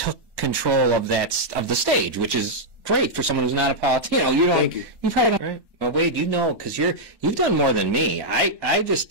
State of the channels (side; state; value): left; late; 1.1 ms